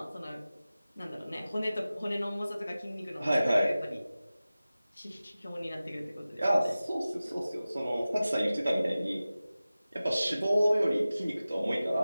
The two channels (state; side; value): inverted; both; correlation -0.96